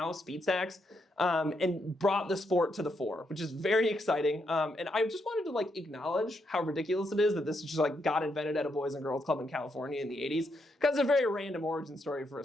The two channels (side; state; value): both; normal; correlation 0.79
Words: Speed Stacks, and brought the sport to the fore, which is very exciting. And I just wanted to like acknowledge how ridiculous it is that this just like got invented at a Boys and Girls Club in California in the 80s, because it's a very random origin story for a